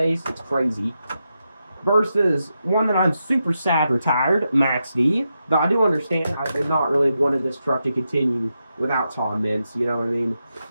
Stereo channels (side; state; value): both; inverted; correlation -0.87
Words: it's crazy. Versus one that I'm super sad retired, Max D. Though I do understand, I did not really wanted this truck to continue without Tom Mintz, you know what I mean?